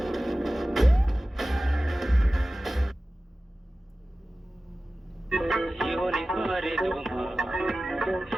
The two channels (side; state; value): both; normal; correlation 0.96